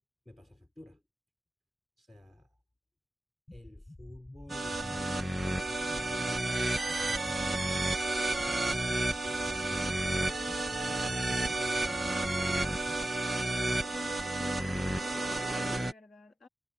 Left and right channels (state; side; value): normal; both; correlation 0.92